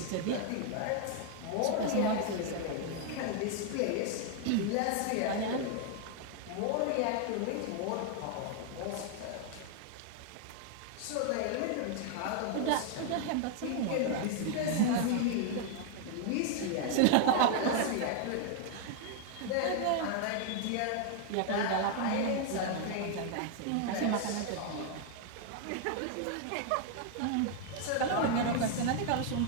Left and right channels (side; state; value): both; different; correlation 0.00